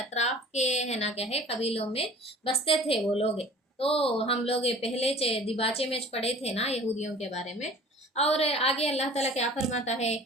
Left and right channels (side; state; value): both; normal; correlation 0.45